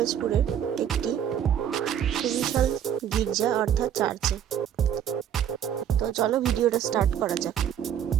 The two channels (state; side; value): quieter; left; 9.5 dB